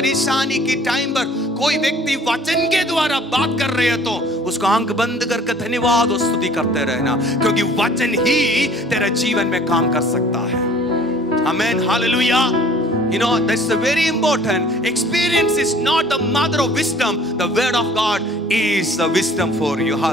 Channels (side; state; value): both; normal; correlation 0.52